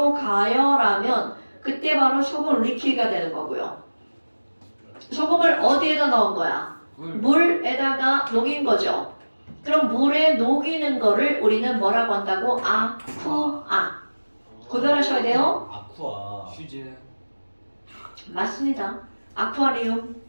가열하면 그때 바로 소금 리퀴드가 되는 거고요. 소금을 어디에다 넣은 거야? 물에다가 녹인 거죠. 그럼 물에 녹이는 거를 우리는 뭐라고 한다고? 아쿠아. 구별하셔야 돼요. 아쿠아. 휴즈. 맞습니다. 아쿠아리움.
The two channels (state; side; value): inverted; both; correlation -1.00